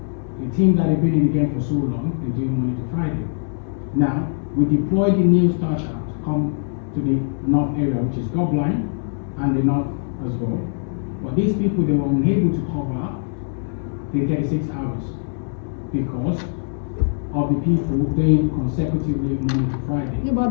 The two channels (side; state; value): right; silent; digital silence